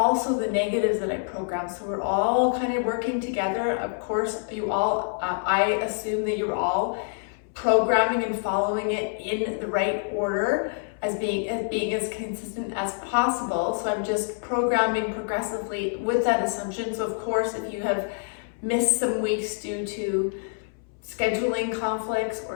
the negatives that I program. So we're all kind of working together. Of course, you all, I assume that you're all programming and following it in the right order as being as consistent as possible. So I'm just programming progressively with that assumption. So of course, if you have missed some weeks due to scheduling conflicts or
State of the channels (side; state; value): right; silent; 61 dB below the other